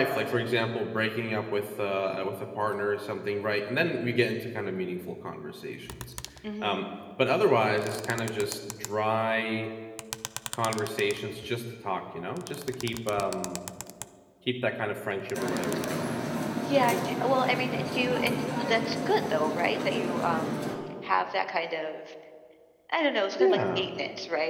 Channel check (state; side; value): identical; both; correlation 1.00